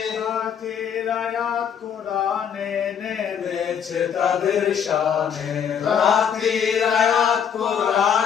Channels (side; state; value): right; quieter; 7.9 dB